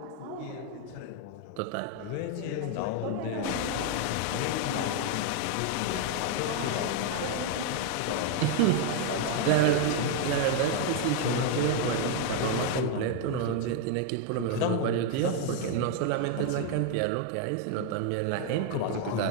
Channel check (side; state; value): both; different; correlation 0.00